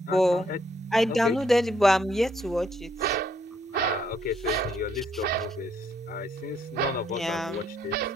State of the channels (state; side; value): normal; both; correlation 0.70